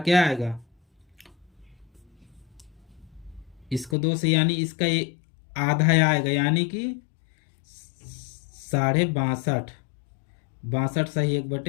आएगा, इसको 2 से यानी इसका ये आधा आएगा यानी कि 62.5, 62 सही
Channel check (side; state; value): right; drops out; at 4.0 s